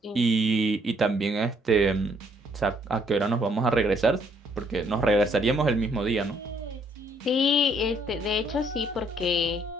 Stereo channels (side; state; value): both; normal; correlation 0.67